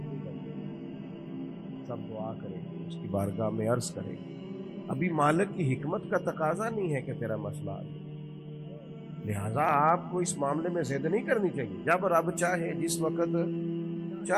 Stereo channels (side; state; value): both; identical; correlation 1.00